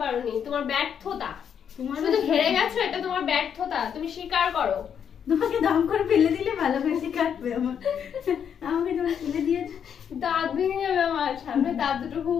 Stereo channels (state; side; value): quieter; right; 8.0 dB